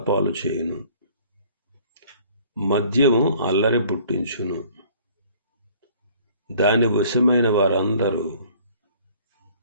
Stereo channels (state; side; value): inverted; both; correlation -0.54